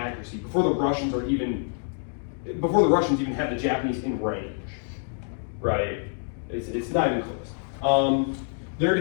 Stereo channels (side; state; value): right; silent; 60 dB below the other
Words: before the Russians even have the Japanese in range, right? It's not even close. They're